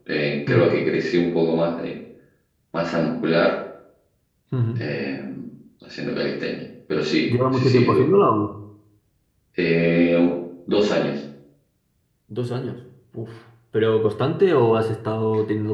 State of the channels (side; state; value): both; identical; correlation 1.00